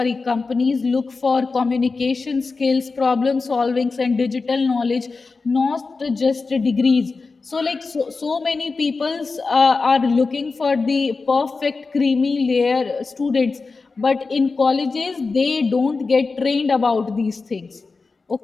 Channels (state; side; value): quieter; right; 4.2 dB